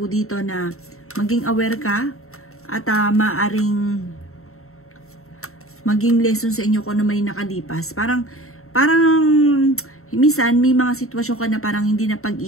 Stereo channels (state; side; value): late; right; 0.63 ms